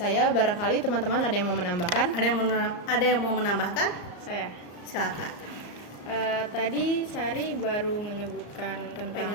barangkali teman-teman ada yang mau menambahkan? Ada yang mau menambahkan? Saya. Silakan. Tadi Sari baru menyebutkan tentang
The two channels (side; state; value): right; late; 34 ms